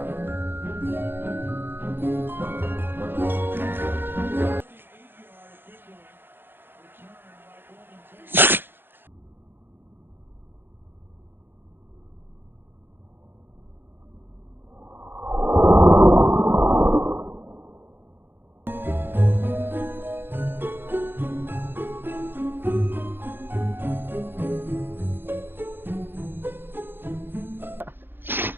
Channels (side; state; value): left; late; 0.10 ms